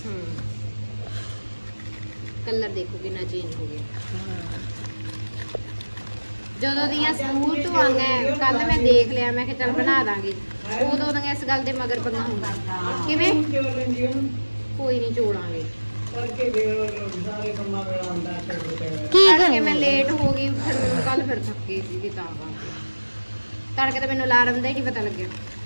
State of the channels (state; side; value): inverted; both; correlation -1.00